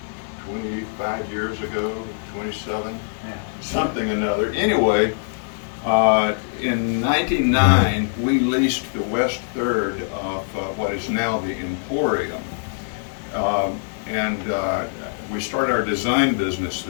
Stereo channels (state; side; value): silent; right; digital silence